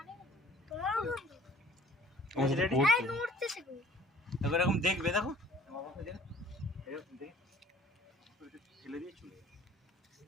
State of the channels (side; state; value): both; normal; correlation 0.52